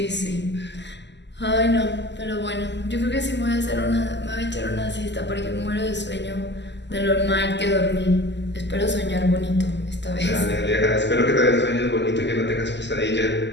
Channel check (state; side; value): late; right; 0.51 ms